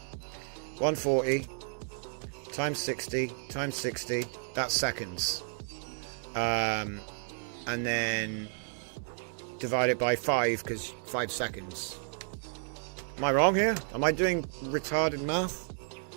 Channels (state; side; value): silent; left; 56 dB below the other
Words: 140 times 60 times 60. That's seconds. And then divide it by 5 because 5 seconds. Am I wrong here? Am I doing retarded math?